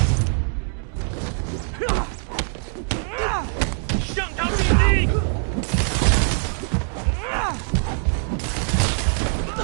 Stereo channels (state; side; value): silent; left; 64 dB below the other